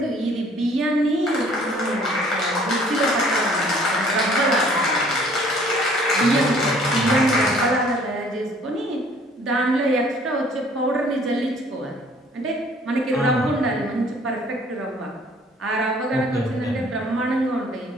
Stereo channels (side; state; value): both; normal; correlation 0.56